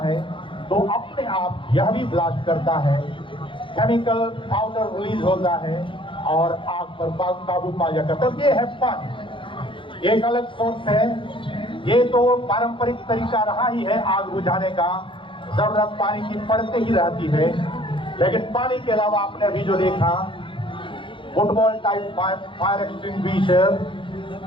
है तो अपने आप यह भी ब्लास्ट करता है। केमिकल पाउडर रिलीज होता है और आग पर काबू पा जाता है। ये है पानी, एक अलग सोर्स है। ये तो पारंपरिक तरीका रहा ही है आग बुझाने का, जरूरत पानी की पड़ते ही रहती है। लेकिन पानी के अलावा आपने अभी जो देखा फुटबॉल टाइप फायर एक्सटिंग्विशर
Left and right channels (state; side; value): late; right; 0.25 ms